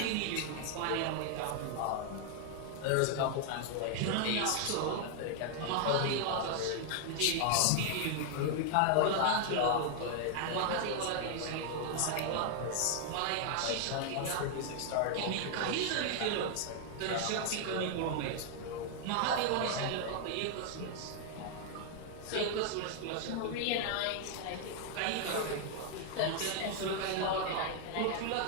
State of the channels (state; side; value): different; both; correlation 0.00